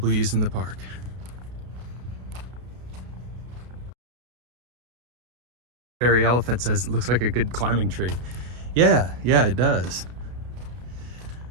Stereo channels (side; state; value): left; late; 32 ms